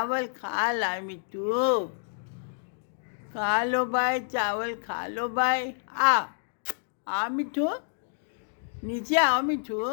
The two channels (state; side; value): silent; right; digital silence